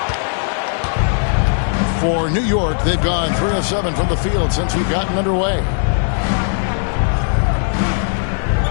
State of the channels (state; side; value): silent; right; digital silence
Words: For New York, they've gone 3 of 7 from the field since we've gotten underway.